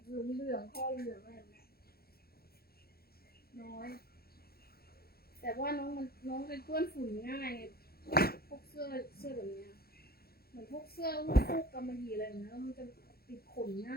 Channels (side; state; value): right; late; 0.45 ms